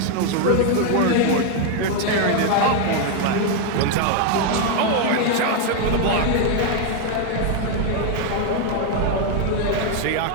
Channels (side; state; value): both; different; correlation 0.01